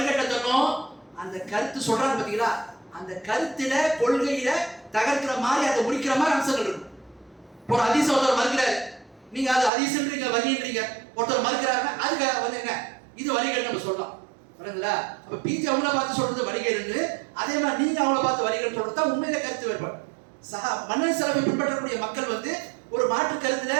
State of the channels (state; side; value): drops out; left; at 9.7 s